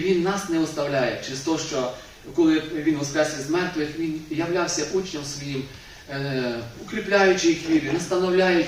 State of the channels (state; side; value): identical; both; correlation 1.00